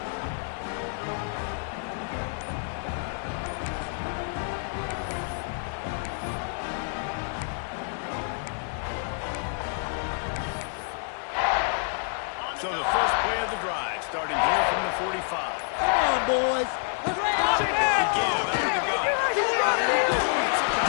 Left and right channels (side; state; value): right; silent; 56 dB below the other